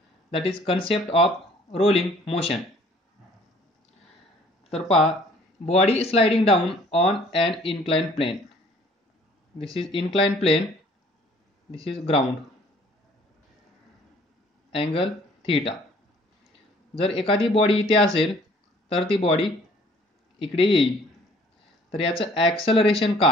that is concept of rolling motion. तर पहा, body sliding down on an inclined plane. This is inclined plane, this is ground, angle theta. जर एखादी बॉडी इथे असेल तर ती बॉडी इकडे येईल. तर याचं ॲक्सेलरेशन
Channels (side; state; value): both; normal; correlation 0.56